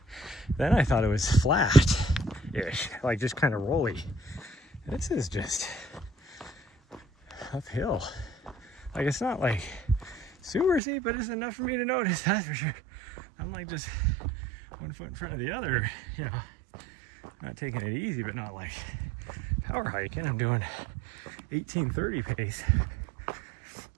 then I thought it was flat-ish, like just kind of rolly. This is just uphill. Like, it's not like super steep, but it's enough for me to notice, that's for sure. I'm like just one foot in front of the other, you know, not taking it easy, but not like power hiking. I'm doing 18:30 pace,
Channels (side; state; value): left; drops out; at 10.8 s